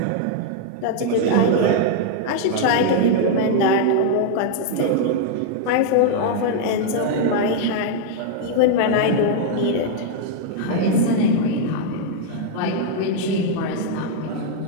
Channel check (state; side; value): different; both; correlation -0.01